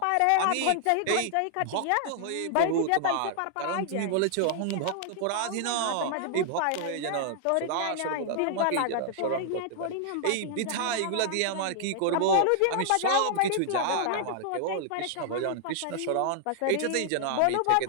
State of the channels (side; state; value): both; different; correlation 0.00